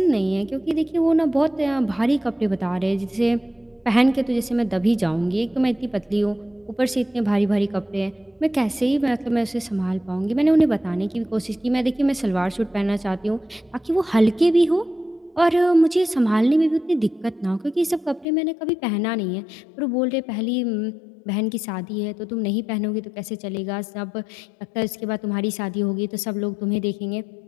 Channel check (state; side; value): drops out; right; at 18.2 s